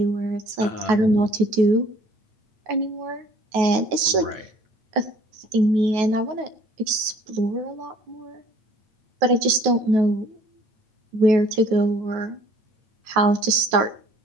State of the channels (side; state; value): left; late; 9.3 ms